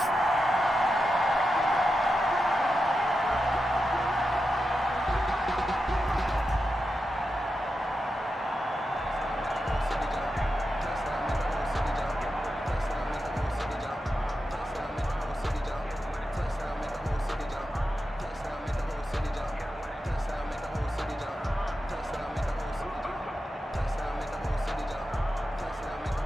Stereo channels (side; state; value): both; normal; correlation 0.89